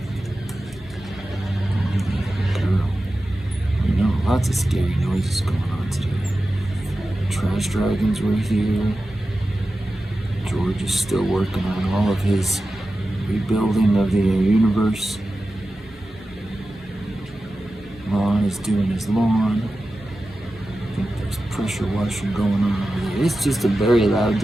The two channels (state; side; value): normal; both; correlation 0.94